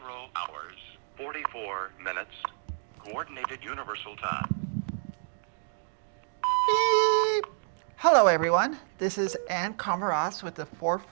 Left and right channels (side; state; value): left; silent; digital silence